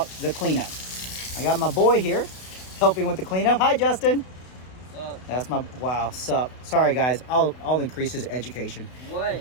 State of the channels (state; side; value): late; right; 32 ms